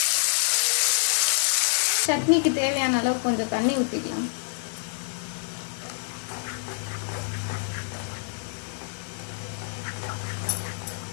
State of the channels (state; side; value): silent; right; 60 dB below the other